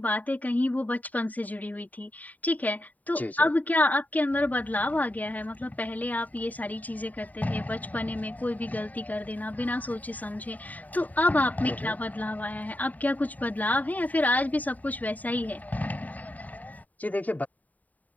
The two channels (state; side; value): late; right; 0.075 ms